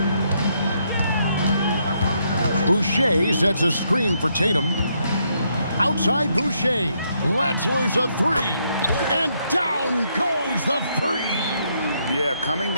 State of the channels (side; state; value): both; inverted; correlation -0.75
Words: Boucher sets a screen for Tatum. Outside Boucher. Let's lose a three. And down goes the three. Yeah, coming